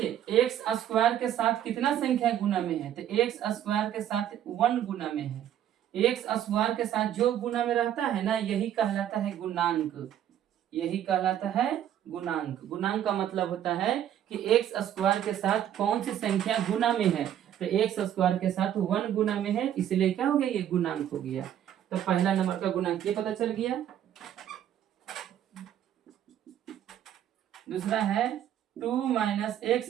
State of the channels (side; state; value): left; quieter; 10.7 dB